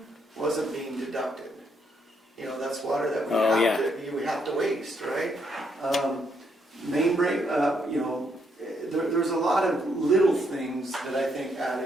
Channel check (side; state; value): both; normal; correlation 0.75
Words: wasn't being deducted. You know, that's water that we have to waste, right? Main break, you know, there's a lot of little things that I think